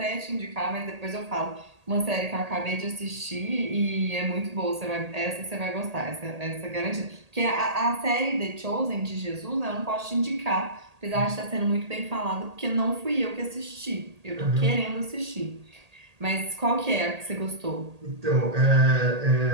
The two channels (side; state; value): left; late; 1.8 ms